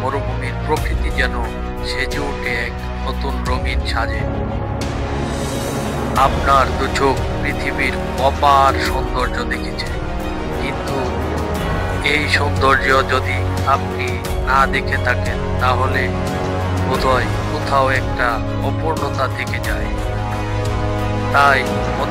মরুভূমির প্রকৃতি যেন সেজে ওঠে এক নতুন রঙিন সাজে। আপনার দু চোখ পৃথিবীর অপার সৌন্দর্য দেখেছে, কিন্তু এই সৌন্দর্য যদি আপনি না দেখে থাকেন, তাহলে বোধহয় কোথাও একটা অপূর্ণতা থেকে যায়। তাই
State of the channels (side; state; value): both; identical; correlation 1.00